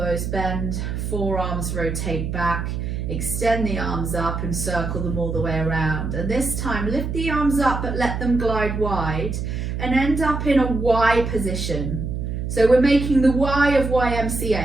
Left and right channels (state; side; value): noise; right; hum, 3 dB below the sound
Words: bend, forearms rotate back, extend the arms up and circle them all the way around. And this time, lift the arms up but let them glide wide and end up in a Y position. So we're making the Y of